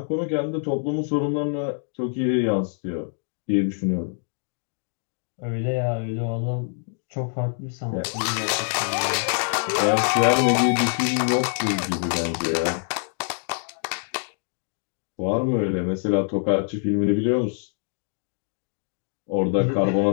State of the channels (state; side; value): silent; right; 62 dB below the other